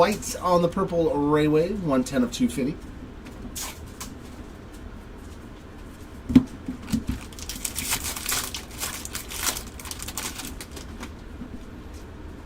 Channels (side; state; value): both; identical; correlation 1.00